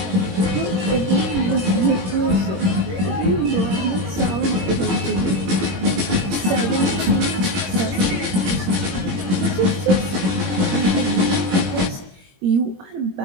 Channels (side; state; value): left; late; 21 ms